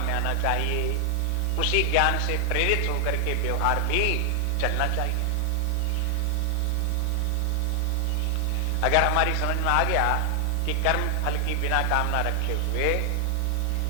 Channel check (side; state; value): both; different; correlation 0.00